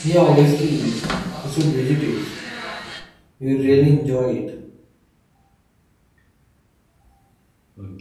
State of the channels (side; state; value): both; identical; correlation 1.00